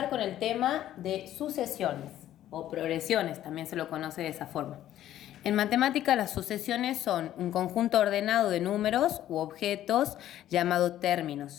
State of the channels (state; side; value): quieter; right; 12.5 dB